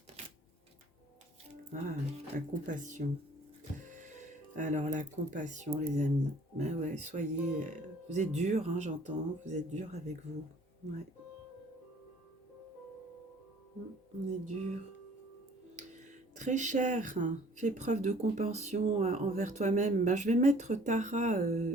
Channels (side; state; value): both; normal; correlation 0.54